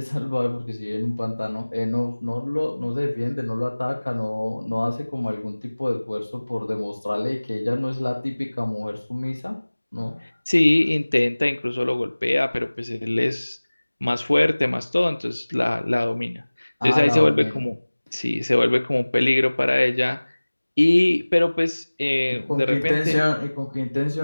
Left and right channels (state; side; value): inverted; both; correlation -1.00